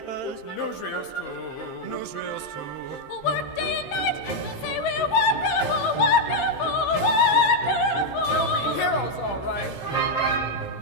Newsreels too. Newsreels too. We'll work day and night. They'll say we're wonderful, wonderful, wonderful. You'll be heroes, all right.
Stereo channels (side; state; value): right; late; 15 ms